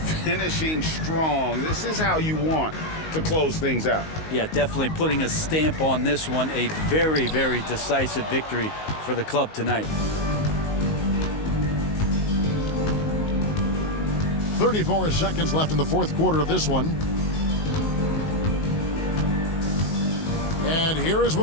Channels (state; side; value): late; right; 19 ms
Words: Finishing strong. This is how you want to close things out. Yeah, definitely putting a stamp on this one. A very, very decisive victory for the club tonight. 34 seconds left in the fourth quarter of this one. And here is